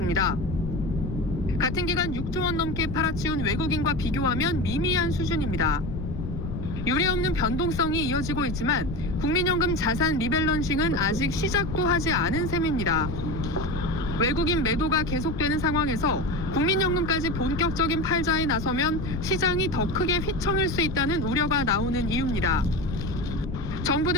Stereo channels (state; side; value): noise; left; rumble, 6 dB below the sound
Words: 같은 기간 6조 원 넘게 팔아치운 외국인과 비교하면 미미한 수준입니다. 유례없는 변동성이 이어지고 있지만 국민연금 자산 리밸런싱은 아직 시작도 하지 않은 셈입니다. 외국인 매도가 계속되는 상황에서 국민연금까지 본격적인 팔자에 나서면 시장이 더 크게 휘청일 수 있다는 우려가 나오는 이유입니다.